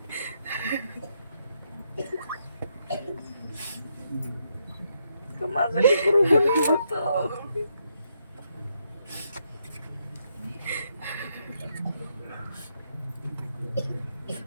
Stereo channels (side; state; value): both; inverted; correlation -0.77